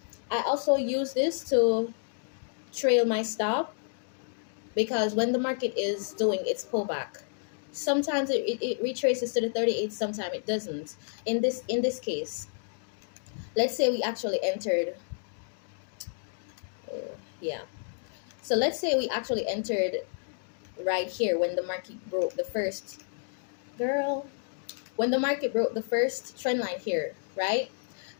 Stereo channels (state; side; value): silent; right; digital silence